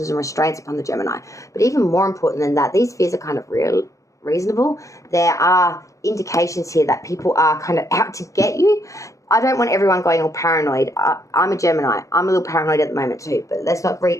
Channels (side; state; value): right; late; 0.16 ms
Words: and restraints upon the Gemini. But even more important than that, these fears are kind of reasonable. There are indications here that people are kind of out to get you. I don't want everyone going all paranoid. I'm a Gemini. I'm a little paranoid at the moment too, but let's not